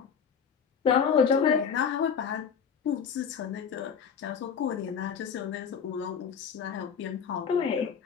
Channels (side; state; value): right; quieter; 6.9 dB